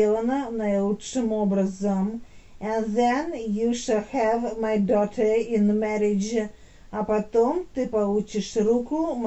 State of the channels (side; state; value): both; identical; correlation 1.00